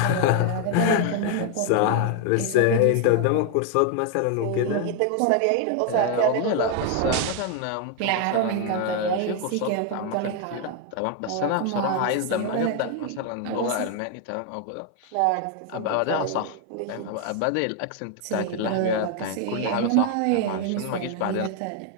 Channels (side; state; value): both; different; correlation 0.01